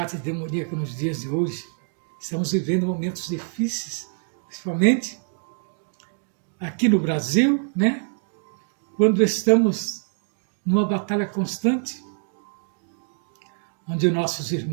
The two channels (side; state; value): left; silent; 59 dB below the other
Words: demoníacas nos dias de hoje. Estamos vivendo momentos difíceis, principalmente aqui no Brasil, quando estamos numa batalha constante, onde nossos